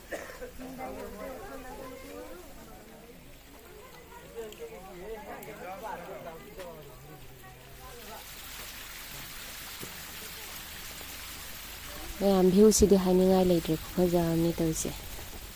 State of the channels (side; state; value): both; identical; correlation 1.00